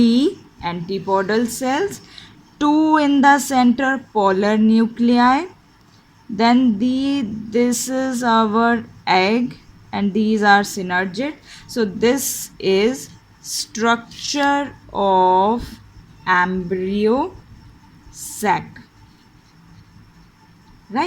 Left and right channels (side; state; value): both; identical; correlation 1.00